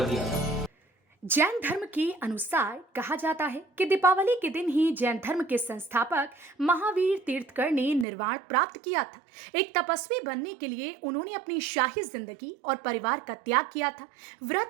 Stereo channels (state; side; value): drops out; left; at 8.1 s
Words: दिया था। जैन धर्म के अनुसार कहा जाता है कि दीपावली के दिन ही जैन धर्म के संस्थापक महावीर तीर्थकर ने निर्वाण प्राप्त किया था। एक तपस्वी बनने के लिए उन्होंने अपनी शाही जिंदगी और परिवार का त्याग किया था।